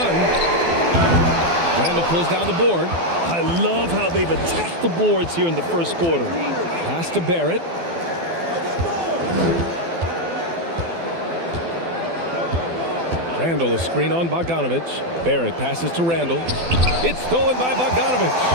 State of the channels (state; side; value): late; left; 12 ms